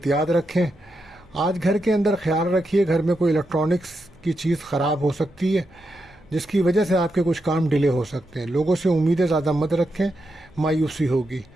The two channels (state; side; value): noise; right; hum, 29 dB below the sound